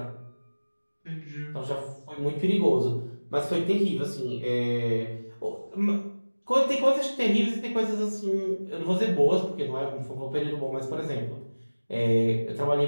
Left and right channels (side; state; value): both; inverted; correlation -1.00